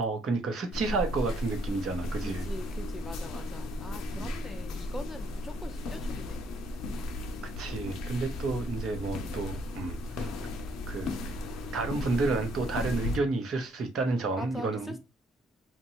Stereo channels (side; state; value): both; normal; correlation 0.69